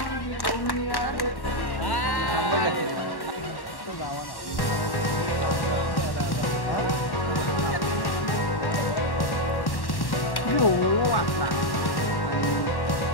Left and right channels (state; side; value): late; right; 1.1 ms